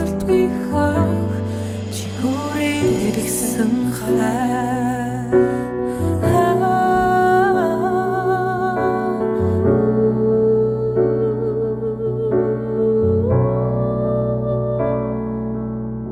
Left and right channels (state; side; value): identical; both; correlation 1.00